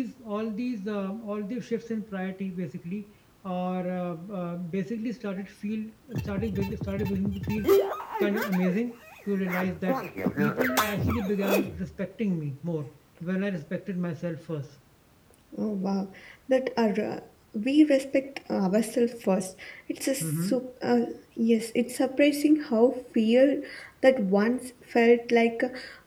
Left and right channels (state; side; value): identical; both; correlation 1.00